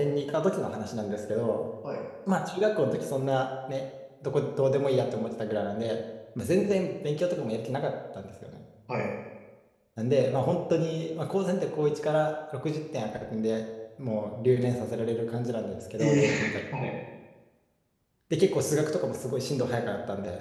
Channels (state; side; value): identical; both; correlation 1.00